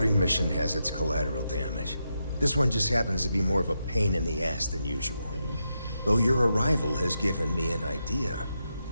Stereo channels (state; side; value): inverted; both; correlation -0.85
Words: mission has its collateral damage. This one just happens to be more of a pain in the ass than usual. Though your arrival has given me an idea